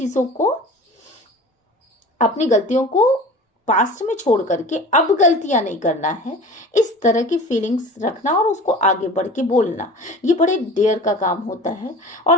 को, अपनी गलतियों को पास्ट में छोड़ करके अब गलतियां नहीं करना है, इस तरह की फीलिंग्स रखना और उसको आगे बढ़ के बोलना, ये बड़े डेयर का काम होता है।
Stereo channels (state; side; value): normal; both; correlation 0.38